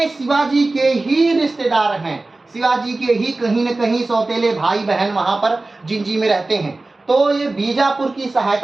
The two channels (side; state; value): left; quieter; 3.2 dB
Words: शिवाजी के ही रिश्तेदार हैं। शिवाजी के ही कहीं न कहीं सौतेले भाई बहन वहां पर जिंजी में रहते हैं। तो ये बीजापुर की